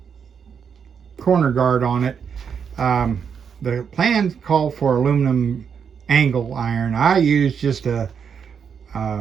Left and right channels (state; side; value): quieter; left; 7.0 dB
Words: corner guard on it. The plans call for aluminum angle iron. I use just a